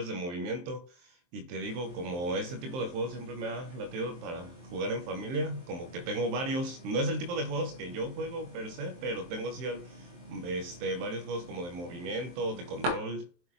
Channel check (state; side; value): late; left; 23 ms